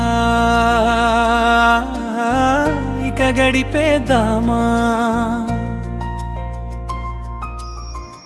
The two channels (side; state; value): both; identical; correlation 1.00